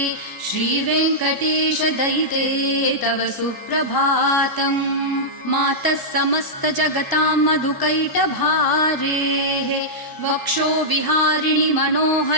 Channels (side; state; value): right; late; 1.0 ms